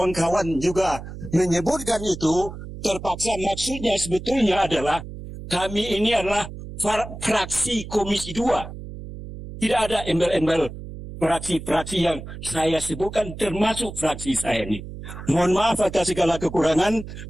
juga menyebutkan itu, terpaksa. Maksudnya sebetulnya adalah kami ini adalah fraksi Komisi 2. Tidak ada embel-embel fraksi-fraksi yang saya sebutkan, termasuk fraksi saya ini. Mohon maaf atas segala kekurangan.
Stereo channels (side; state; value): right; noise; hum, 11 dB below the sound